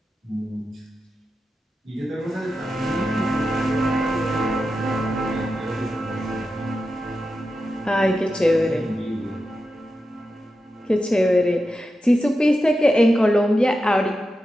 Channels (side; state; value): both; normal; correlation 0.90